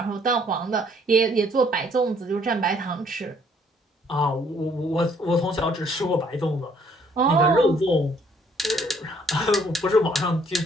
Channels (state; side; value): normal; both; correlation 0.64